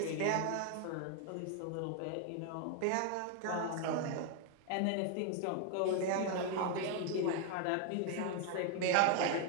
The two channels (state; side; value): different; both; correlation 0.00